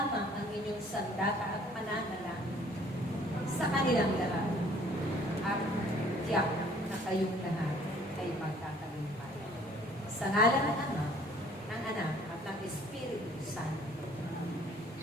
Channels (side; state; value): both; normal; correlation 0.57